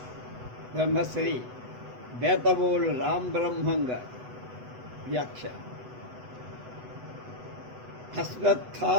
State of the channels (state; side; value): late; left; 8.1 ms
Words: బ్రహ్మశ్రీ బేతవోలు రామబ్రహ్మం గారి వ్యాఖ్య.